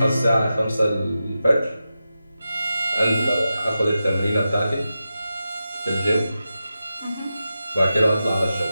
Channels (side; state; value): both; inverted; correlation -0.91